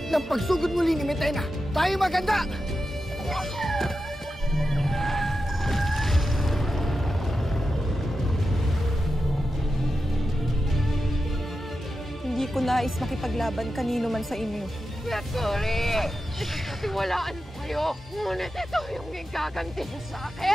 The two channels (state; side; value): normal; both; correlation 0.90